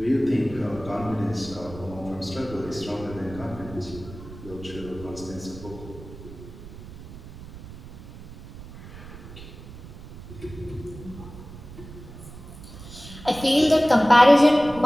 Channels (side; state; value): right; noise; rumble, 15 dB below the sound